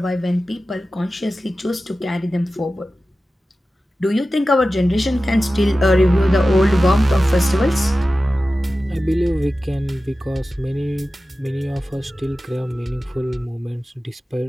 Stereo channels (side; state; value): both; normal; correlation 0.95